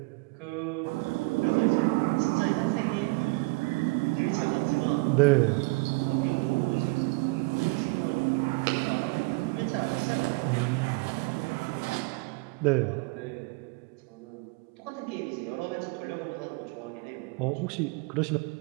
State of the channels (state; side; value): quieter; left; 27.1 dB